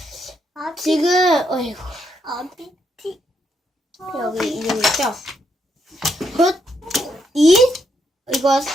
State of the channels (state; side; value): normal; both; correlation 0.77